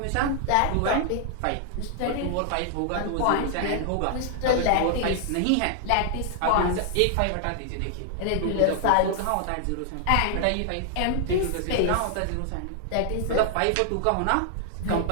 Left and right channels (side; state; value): both; different; correlation 0.00